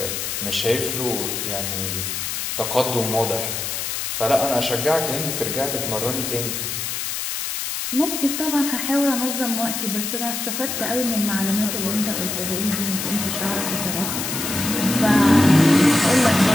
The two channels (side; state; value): left; noise; hiss, 3 dB below the sound